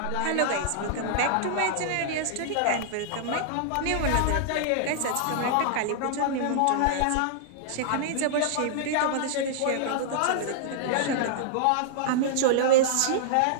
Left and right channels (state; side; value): different; both; correlation -0.02